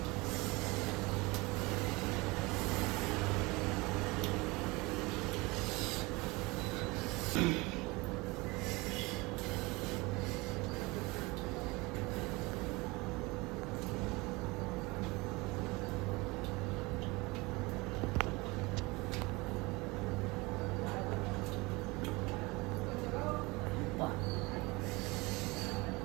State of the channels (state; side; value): quieter; left; 24.0 dB